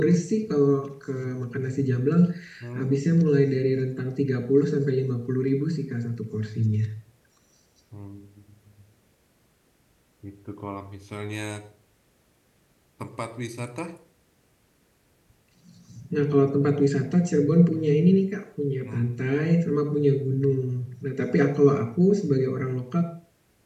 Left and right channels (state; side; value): identical; both; correlation 1.00